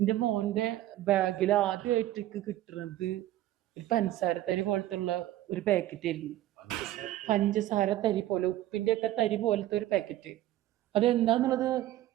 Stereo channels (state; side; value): quieter; left; 14.3 dB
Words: മോന്റെ ബാഗിൽ ആദ്യമായിട്ട് കിട്ടുന്നത് ഒരു പഞ്ചസാര തരി പോലത്തെ ഉള്ള ഒരു പാക്കറ്റ് ആയിരുന്നു. പഞ്ചസാര തരി പോലെ, ഉപ്പിന്റെ ഒക്കെ തരി പോലത്തെ ഒരു പാക്കറ്റ്. അതെന്താന്നുള്ളത്